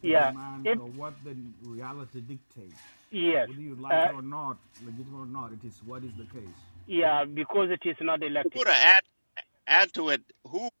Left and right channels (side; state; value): both; inverted; correlation -1.00